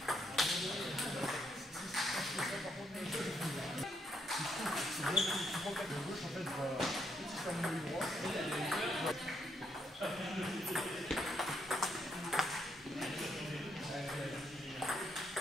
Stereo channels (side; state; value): both; normal; correlation 0.76